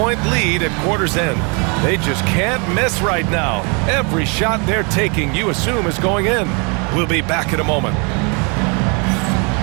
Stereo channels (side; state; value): left; quieter; 33.7 dB